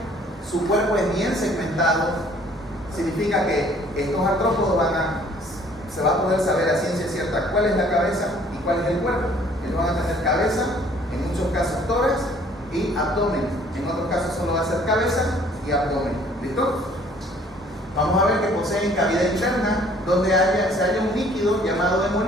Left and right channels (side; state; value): both; normal; correlation 0.57